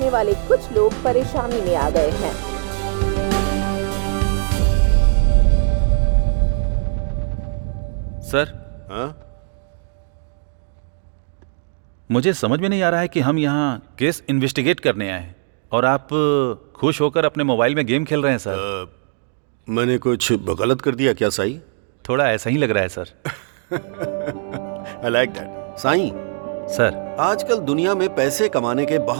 वाले कुछ लोग परेशानी में आ गए हैं। सर, मुझे समझ में नहीं आ रहा है कि हम यहाँ केस इन्वेस्टिगेट करने आए हैं और आप खुश होकर अपने मोबाइल में गेम खेल रहे हैं सर। मैंने कुछ गलत कर दिया क्या साईं? थोड़ा ऐसा ही लग रहा है sir. I like that. Sai, sir, आजकल दुनिया में पैसे कमाने के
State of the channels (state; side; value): silent; left; digital silence